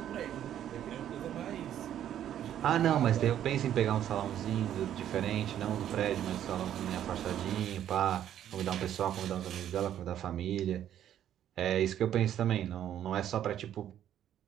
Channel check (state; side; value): quieter; left; 10.8 dB